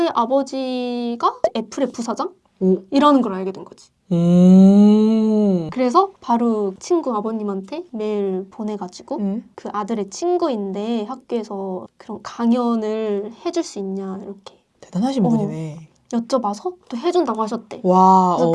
아버지가 애플의 부사장? 이라는 걸 알게 된 거지. 그래서 바로 친구 아버님한테 메일 보내가지고 그 아들의 친구인데 학교에서 그런 강연을 해줄 수 있냐 이렇게 대단하신 분이네. 여쭤봐서 또 해준다고 하셨대. 와. 그래서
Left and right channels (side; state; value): both; identical; correlation 1.00